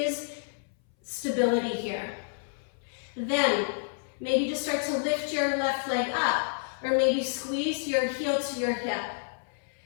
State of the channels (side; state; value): right; silent; 58 dB below the other